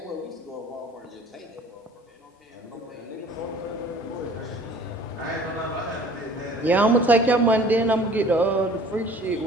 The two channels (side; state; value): both; normal; correlation 0.50